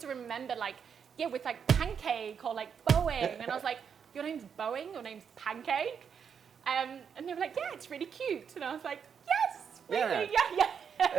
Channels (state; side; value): quieter; left; 7.1 dB